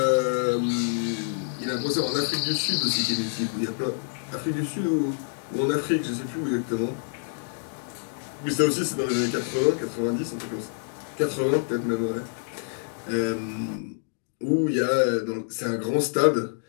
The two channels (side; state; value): right; silent; digital silence